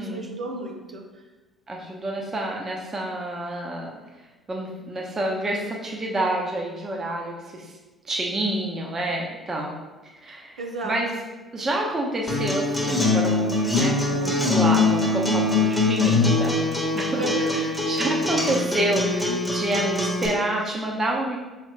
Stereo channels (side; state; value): both; normal; correlation 0.47